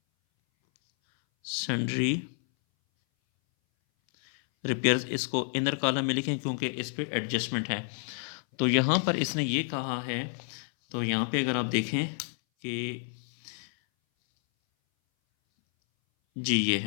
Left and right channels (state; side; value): silent; right; 58 dB below the other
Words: सन्ड्री रिपेयर्स, इसको इनर कॉलम में लिखें क्योंकि इस पे एडजस्टमेंट है। तो यहाँ पर इसने ये कहा है, तो यहाँ पे अगर आप देखें कि जी ये